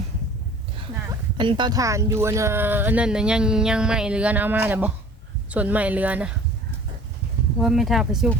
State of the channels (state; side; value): normal; both; correlation 0.47